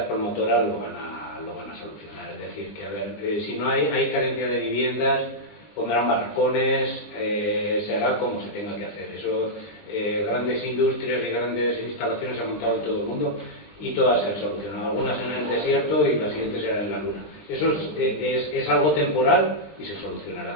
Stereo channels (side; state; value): right; late; 20 ms